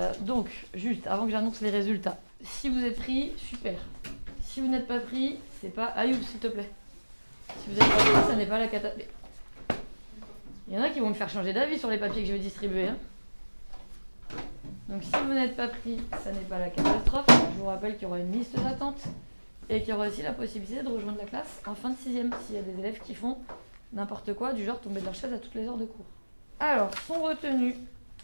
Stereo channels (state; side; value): inverted; both; correlation -1.00